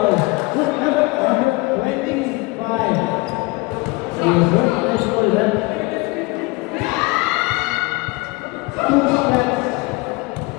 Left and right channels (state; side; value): quieter; right; 24.5 dB